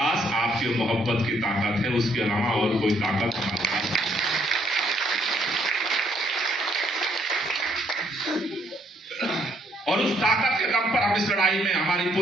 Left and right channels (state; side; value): normal; both; correlation 0.69